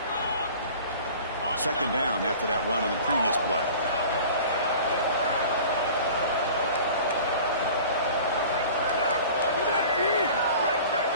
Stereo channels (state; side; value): inverted; both; correlation -0.43